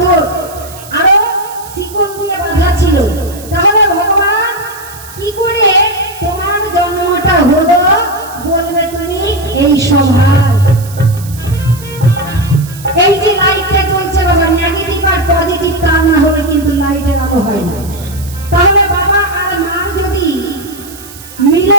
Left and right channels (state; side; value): noise; right; hiss, 17 dB below the sound